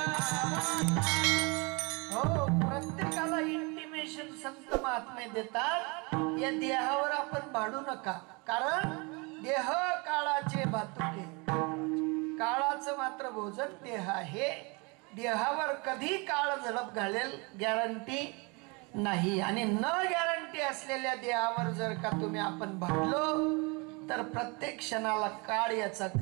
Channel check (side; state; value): left; quieter; 29.4 dB